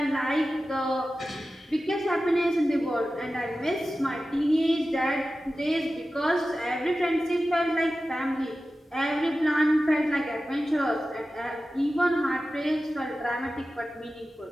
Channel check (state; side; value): normal; both; correlation 0.94